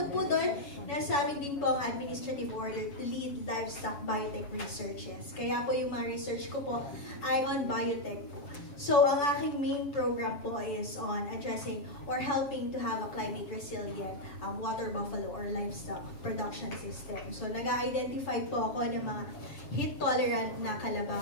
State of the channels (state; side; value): late; right; 7.1 ms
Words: po doon, nasa amin din po ang administrative order to lead livestock biotech researches. Kaya po yung mga research ko po ay on biotech po. So, ang aking main program po is on addressing or helping to have a climate resilient water buffalo or livestock production system. So, nag-identify po ako ng mga heat-tolerant na